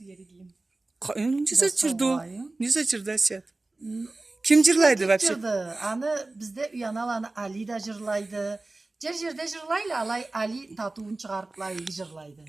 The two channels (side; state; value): left; quieter; 3.1 dB